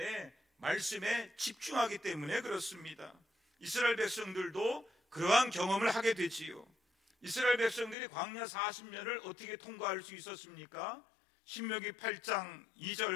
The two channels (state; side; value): drops out; right; at 8.0 s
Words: 말씀에 집중하기 때문에 그렇습니다. 이스라엘 백성들도 그러한 경험을 하게 되지요. 이스라엘 백성들이 광야 40년을 어떻게 통과할 수 있었습니까? 신명기 8장